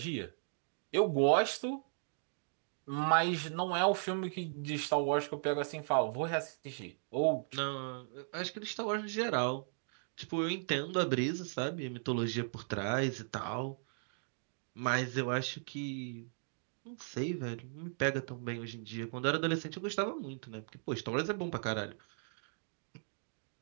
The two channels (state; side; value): silent; left; digital silence